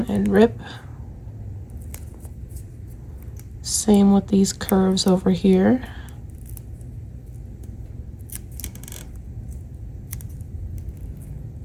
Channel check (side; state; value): both; identical; correlation 1.00